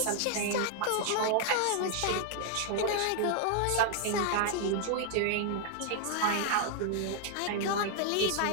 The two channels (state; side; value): different; both; correlation 0.00